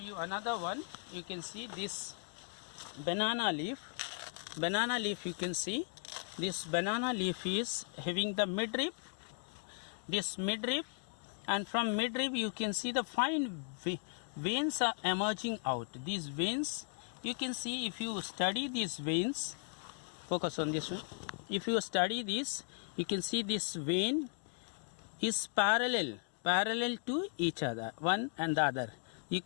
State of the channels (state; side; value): silent; right; 53 dB below the other